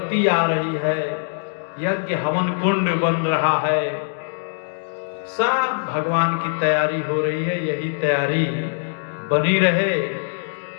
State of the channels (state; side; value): silent; right; digital silence